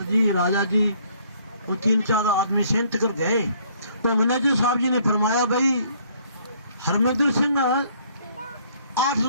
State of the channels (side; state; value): both; inverted; correlation -0.62